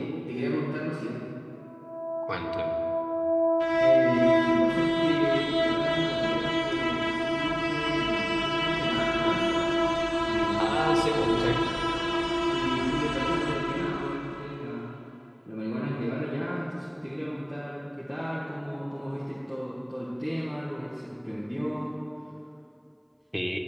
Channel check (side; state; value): both; identical; correlation 1.00